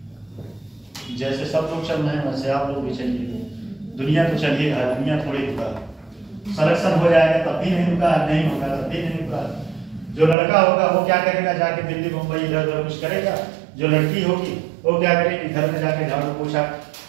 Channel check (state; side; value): drops out; left; at 10.4 s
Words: जैसे सब लोग चल रहे हैं वैसे आप लोग भी चलिए। दुनिया तो चलिए, दुनिया थोड़ी रुका। सिलेक्शन हो जाएगा तब भी नहीं रुका, नहीं होगा तब भी नहीं रुका। जो लड़का होगा वो क्या करेगा, जाके दिल्ली मुंबई इधर उधर कुछ करेगा। जो लड़की होगी वो क्या करेगी, घर में जाके झाड़ू पोछा